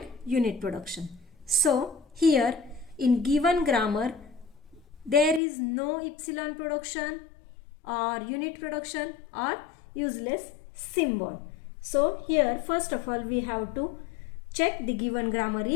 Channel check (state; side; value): drops out; right; at 5.4 s